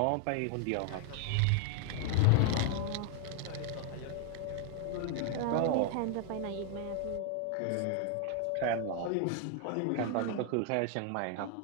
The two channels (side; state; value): both; different; correlation 0.00